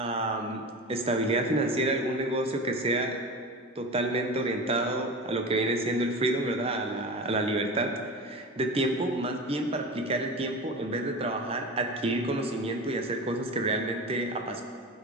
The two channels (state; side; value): normal; both; correlation 0.29